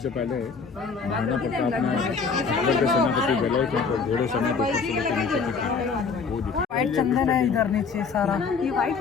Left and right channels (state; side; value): quieter; right; 5.2 dB